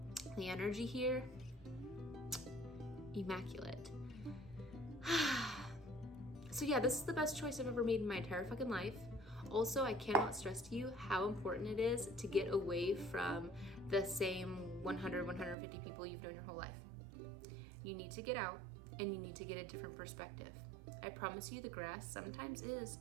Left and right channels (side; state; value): left; drops out; at 15.6 s